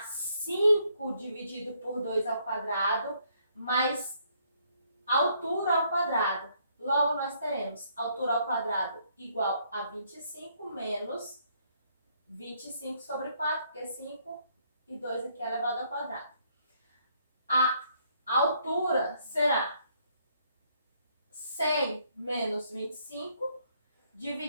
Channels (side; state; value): both; inverted; correlation -0.69